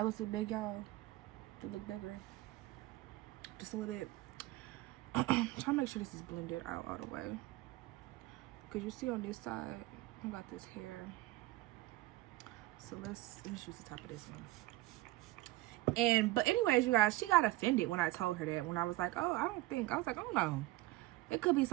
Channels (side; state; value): left; quieter; 18.2 dB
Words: looks so big, y'all. They look bigger, just a little bit. I'm trying to make sure this is blended out all the way, because you see on this side I got this hair, so let's use the top of this one. But anyways, you guys, she got offended when I told her that, when I was like, oh, I was like, oh no, it could be